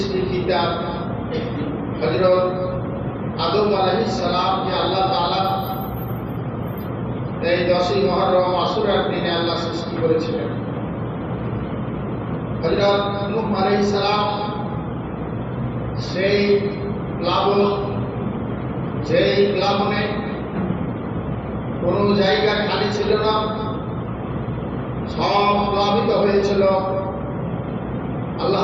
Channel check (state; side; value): identical; both; correlation 1.00